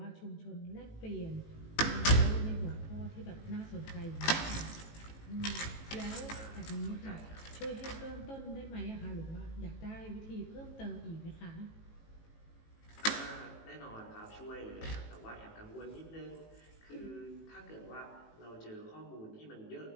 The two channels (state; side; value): late; right; 18 ms